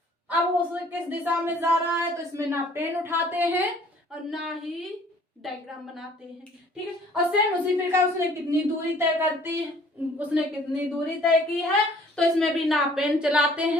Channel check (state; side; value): normal; both; correlation 0.55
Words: अब वो किस दिशा में जा रहा है, तो इसमें ना पेन उठाते हैं और ना ही डायग्राम बनाते हैं। ठीक है, और सेम उसी प्रकार उसने कितनी दूरी तय करती है, उसने कितनी दूरी तय की है, तो इसमें भी ना पेन चलाते